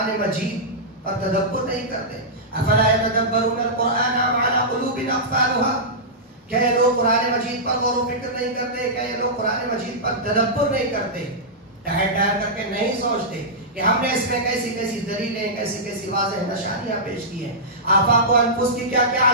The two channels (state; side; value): normal; both; correlation -0.14